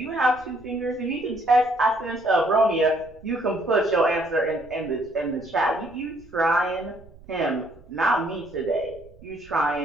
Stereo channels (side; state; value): right; noise; rumble, 23 dB below the sound